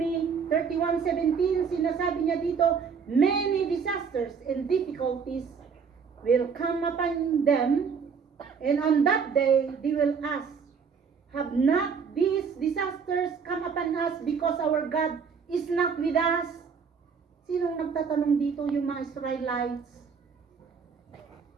31:17, sinasabi niya dito, many disasters and difficulties will come upon them, and on that day they will ask, have not these disasters come upon us because our God is not with us? Sinong nagtatanong dito? Yung mga Israelites.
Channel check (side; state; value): left; quieter; 6.1 dB